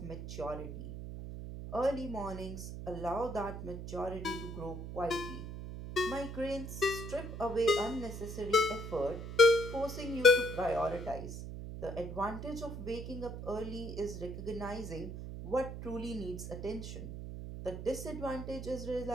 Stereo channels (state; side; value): noise; right; hum, 8 dB below the sound